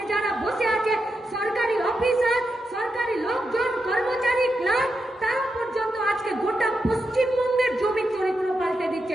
যারা বসে আছে, সরকারি অফিসার, সরকারি লোকজন, কর্মচারী, ক্লার্ক, তারা পর্যন্ত আজকে গোটা পশ্চিমবঙ্গের জমি চরিত্র পাল্টে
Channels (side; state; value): both; normal; correlation 0.86